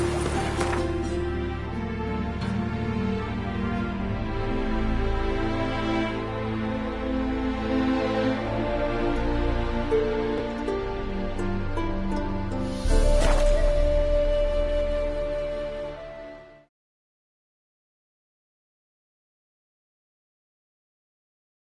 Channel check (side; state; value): both; identical; correlation 1.00